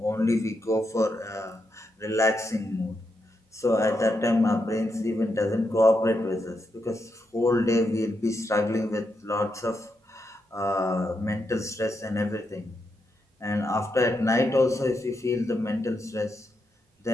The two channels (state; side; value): normal; both; correlation 0.83